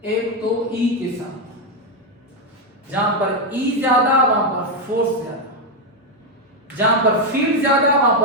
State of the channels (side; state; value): both; normal; correlation 0.05